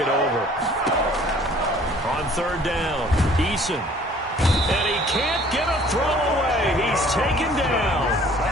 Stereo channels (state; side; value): normal; both; correlation 0.54